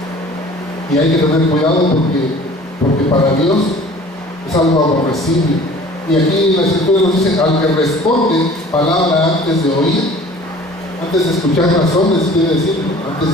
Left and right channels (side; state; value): both; normal; correlation 0.47